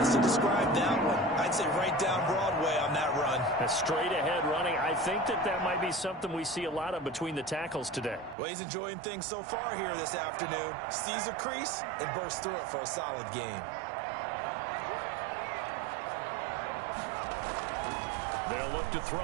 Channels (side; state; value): left; drops out; at 8.3 s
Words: to describe that one? I'd say right down Broadway on that run. A straight-ahead running. I think that might be something we see a lot of between the tackles today. Well, he's enjoying things so far here this afternoon. Sees a crease and bursts through it for a solid game. They'll look to